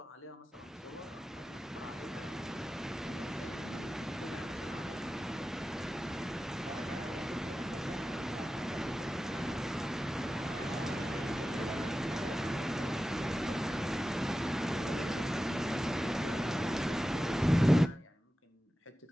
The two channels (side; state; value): both; normal; correlation 0.94